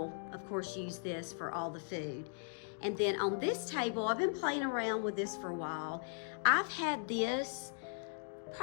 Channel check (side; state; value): right; silent; digital silence